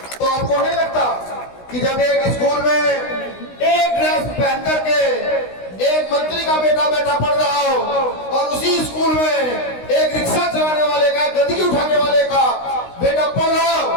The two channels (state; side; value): late; right; 16 ms